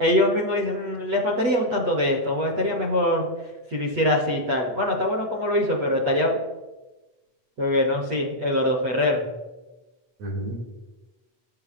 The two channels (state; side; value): late; left; 8.3 ms